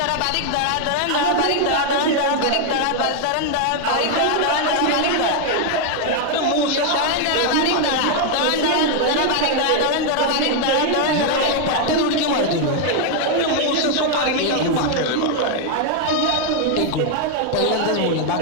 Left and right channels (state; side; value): different; both; correlation 0.00